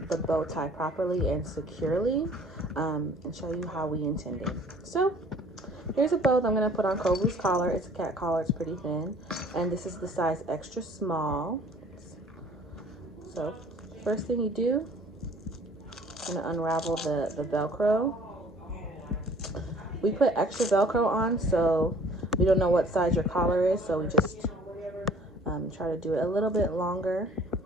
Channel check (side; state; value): both; normal; correlation 0.53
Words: the bow tie properly and securely and show you how we intended. So here's a bow that I'm going to put on Kovu's collar. It's a cat collar, it's pretty thin, and this is the size extra small. So first thing you do, I'm going to unravel the velcro. We put extra velcro on so we don't know what size your collar is, so we just try to do it a little bit longer